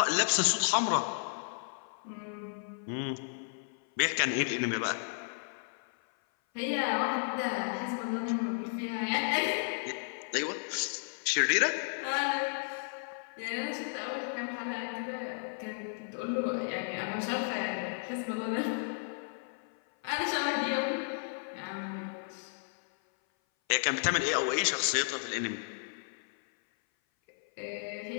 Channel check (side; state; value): right; silent; 55 dB below the other